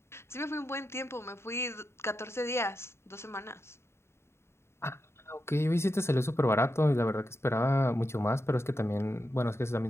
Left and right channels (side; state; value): right; late; 0.13 ms